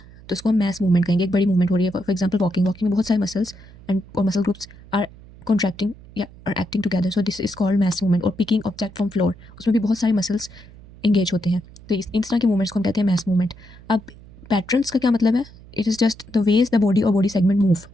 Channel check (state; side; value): noise; right; hum, 21 dB below the sound